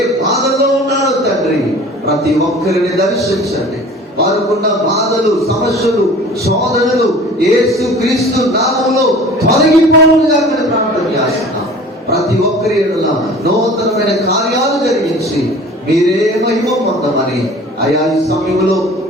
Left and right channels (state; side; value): normal; both; correlation 0.44